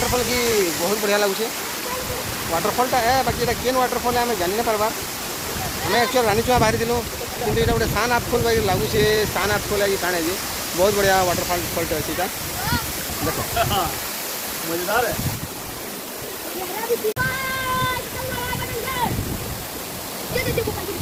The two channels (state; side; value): identical; both; correlation 1.00